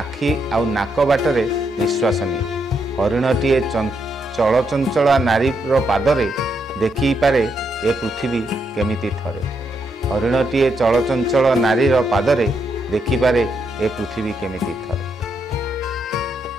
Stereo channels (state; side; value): normal; both; correlation 0.79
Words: आउ नाक बाटरे निश्वास निए। हरिणटीए चल चंचला नारीर पादरे देखी पारे ए पृथ्वी केमिति थरे। हरिणटीए चल चंचल नारीर पादरे देखी पारे ए पृथ्वी केमिति थरे।